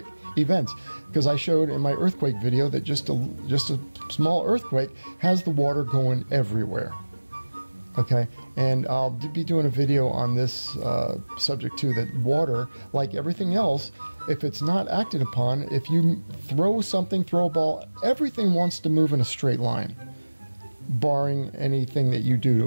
events. Because I showed in my earthquake video that just a small earthquake has the water going everywhere. Okay, and I'll be doing a video on this subject too, that water, like everything else, if it's not acted upon, if you throw a ball, everything wants to move in a straight line, barring anything that you do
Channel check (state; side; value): inverted; both; correlation -1.00